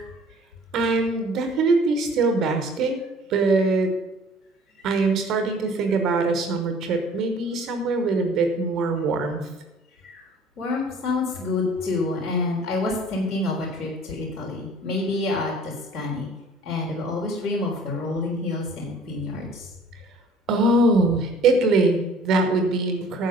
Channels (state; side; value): normal; both; correlation 0.51